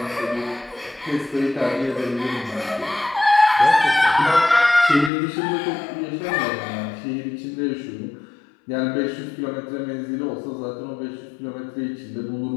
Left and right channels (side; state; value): right; drops out; at 5.1 s